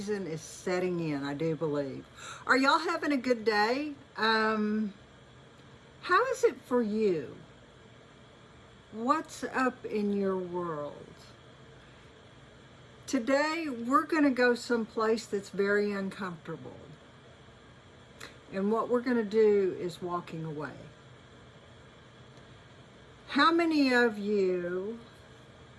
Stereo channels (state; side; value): identical; both; correlation 1.00